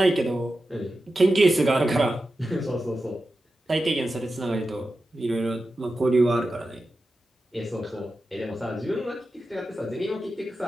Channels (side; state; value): both; normal; correlation 0.92